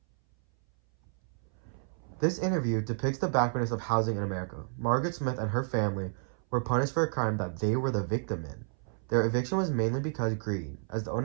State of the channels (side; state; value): left; silent; 57 dB below the other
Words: This interview depicts the backwardness of housing in America. Margaret Smith and her family were punished for a crime that they were the victim in. Their eviction was mainly because greed, as the